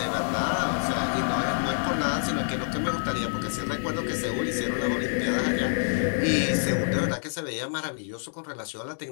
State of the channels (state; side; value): silent; right; digital silence